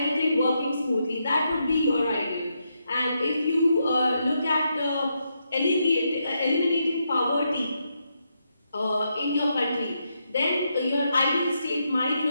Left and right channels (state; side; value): inverted; both; correlation -0.81